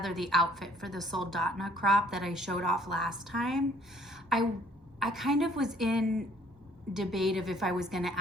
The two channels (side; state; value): both; normal; correlation 0.58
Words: the outfit for the soldotna crop that I showed off last time. I kind of was in debate of if I was going to